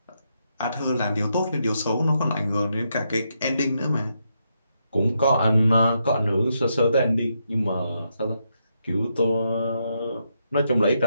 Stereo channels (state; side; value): inverted; both; correlation -0.81